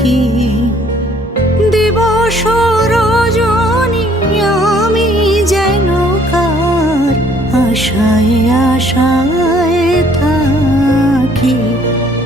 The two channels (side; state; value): both; normal; correlation 0.61